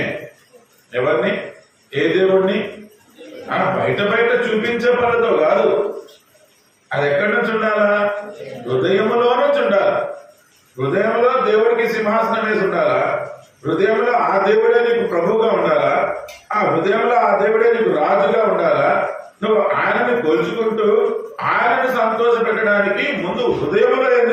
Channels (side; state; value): both; identical; correlation 1.00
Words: ఎవరిని? ఏ దేవుణ్ణి? బయట చూపించే పనితో కాదు. అది ఎక్కడి నుంచి ఉండాలా? హృదయములో నుంచి ఉండాలా. హృదయంలో దేవుడికి సింహాసనం వేసి ఉండాలా. హృదయంలో ఆ దేవుడే నీకు ప్రభువుగా ఉండాలా. ఆ హృదయంలో ఆ దేవుడే నీకు రాజుగా ఉండాలా. నువ్వు ఆయనని కొలుచుకుంటూ ఆయనని సంతోష పెట్టడానికి ముందు హృదయంలో ఏం